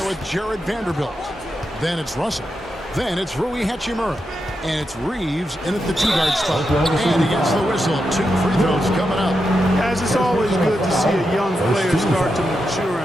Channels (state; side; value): normal; both; correlation 0.86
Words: with Jared Vanderbilt. Then it's Russell. Then it's Rui Hachimura. And it's Reeves in at the 2-guard spot. And he gets the whistle. 2 free throws coming up. Guys, it's always good to see a young player start to mature